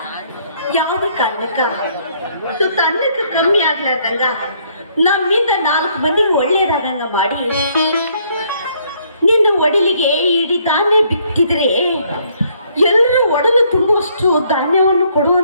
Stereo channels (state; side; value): inverted; both; correlation -0.67